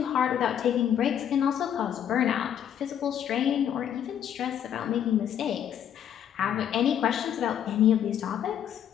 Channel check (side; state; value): right; quieter; 9.6 dB